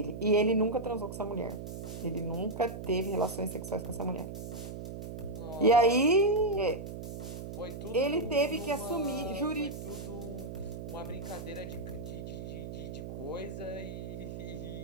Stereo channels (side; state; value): right; noise; hum, 8 dB below the sound